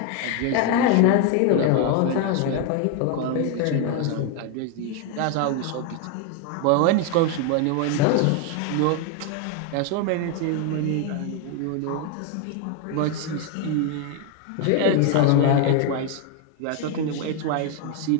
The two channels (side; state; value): both; different; correlation 0.01